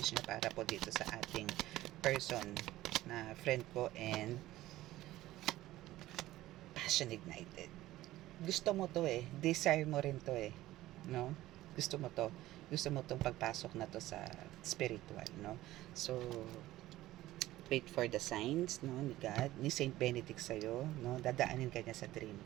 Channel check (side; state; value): left; quieter; 15.9 dB